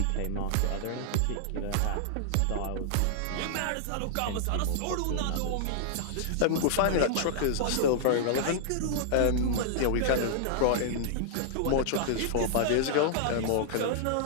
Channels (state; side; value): different; both; correlation -0.01